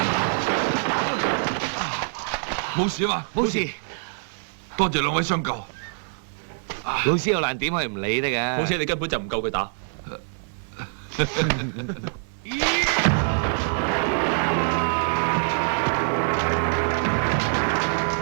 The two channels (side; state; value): left; silent; digital silence